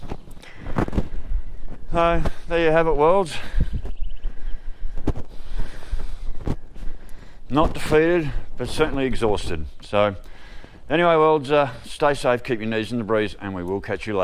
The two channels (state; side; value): identical; both; correlation 1.00